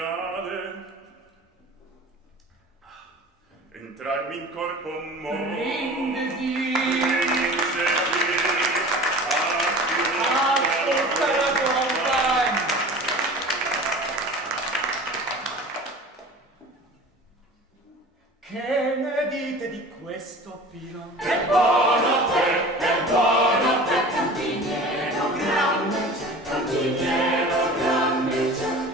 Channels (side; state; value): both; normal; correlation 0.39